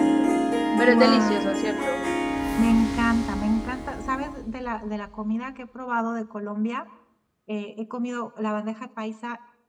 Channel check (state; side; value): identical; both; correlation 1.00